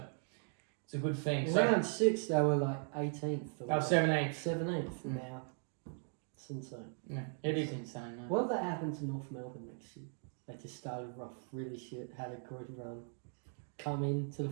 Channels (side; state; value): left; silent; 52 dB below the other